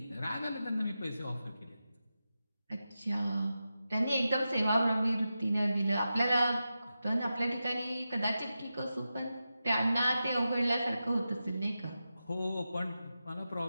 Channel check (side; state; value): both; inverted; correlation -0.91